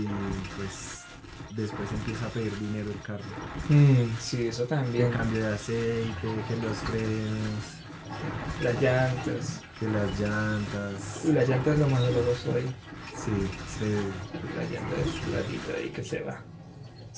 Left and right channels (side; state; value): both; identical; correlation 1.00